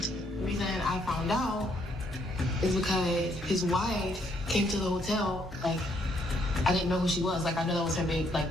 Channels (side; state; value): both; normal; correlation 0.71